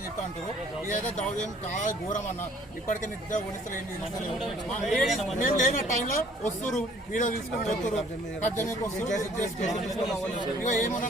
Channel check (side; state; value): both; normal; correlation 0.57